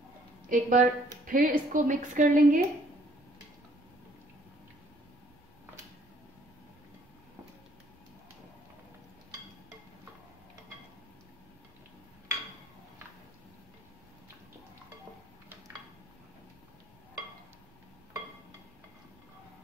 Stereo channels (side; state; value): right; noise; rumble, 30 dB below the sound